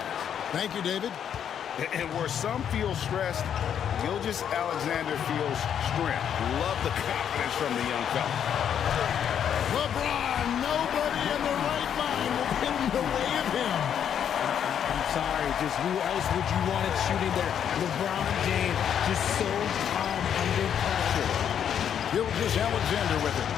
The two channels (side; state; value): right; quieter; 8.8 dB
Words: Thank you, David. And where some feel stressed, Gilgeous-Alexander feels strength. Love the confidence from the young fella. LeBron, nobody in the right mind will get in the way of him. I'm sorry, just who else would you want it shooting there? LeBron James, just so calm under pressure. Gilgeous-Alexander with it.